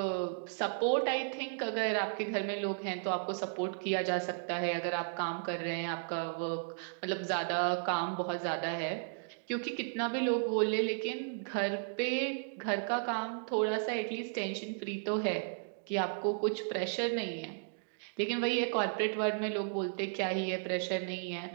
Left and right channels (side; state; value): left; silent; digital silence